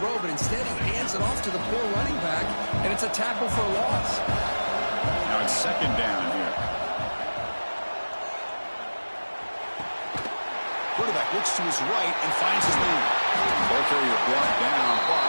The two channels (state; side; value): inverted; both; correlation -1.00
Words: but instead he hands it off to the poor running back, and it's a tackle for a loss. Now it's 2nd down here. Quarterback looks to his right and finds his man. Ball carrier brought down,